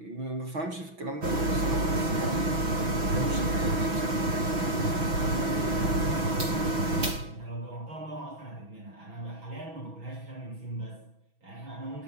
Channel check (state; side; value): late; left; 6.1 ms